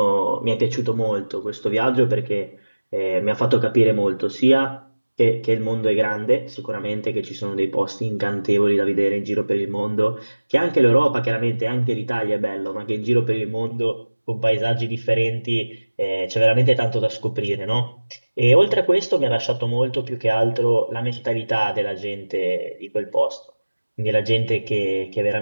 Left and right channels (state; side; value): inverted; both; correlation -1.00